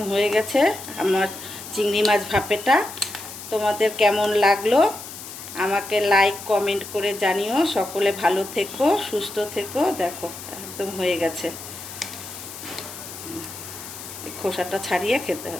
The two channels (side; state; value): left; noise; hiss, 12 dB below the sound